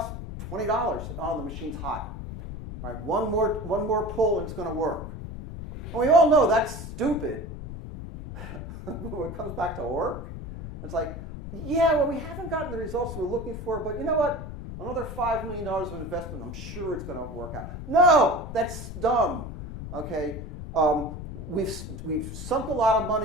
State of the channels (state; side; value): noise; left; rumble, 8 dB below the sound